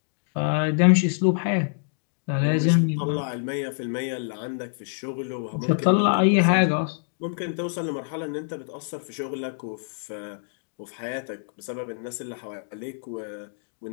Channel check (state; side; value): silent; right; digital silence